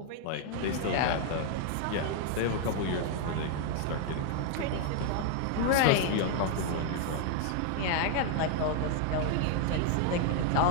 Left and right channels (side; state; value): both; different; correlation 0.00